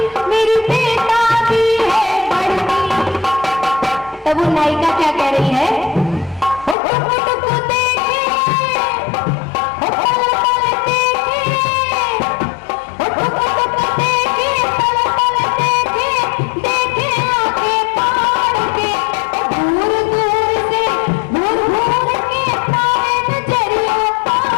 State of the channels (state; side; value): drops out; right; at 6.8 s